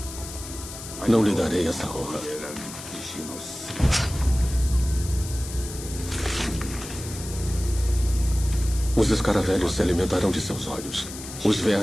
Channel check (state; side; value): noise; left; hiss, 12 dB below the sound